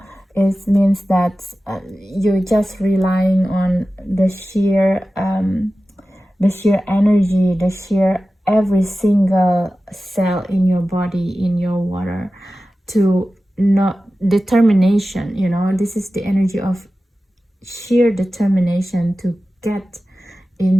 it means that you're just relying on the sheer energy, the sheer every single cell in your body, in your water, to not determination, you know. This is the energy of sheer determination to get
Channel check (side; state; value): both; normal; correlation 0.94